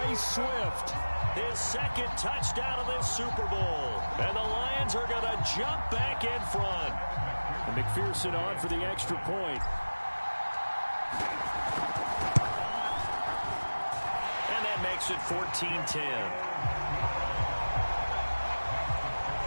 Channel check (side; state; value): both; inverted; correlation -1.00